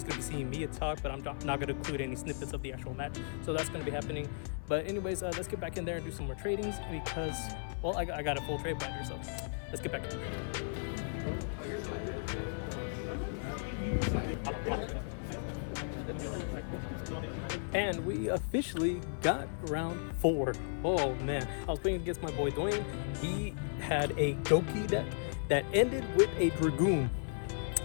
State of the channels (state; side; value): silent; right; 54 dB below the other